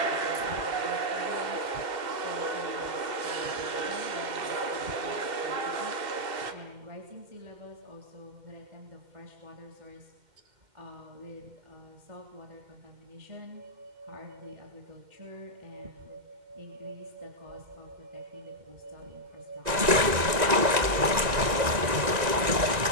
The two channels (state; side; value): late; left; 1.9 ms